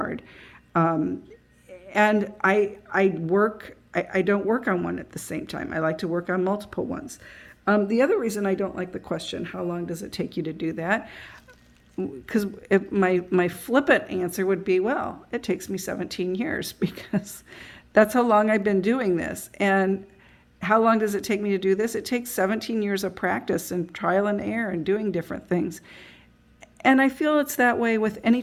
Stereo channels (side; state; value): both; identical; correlation 1.00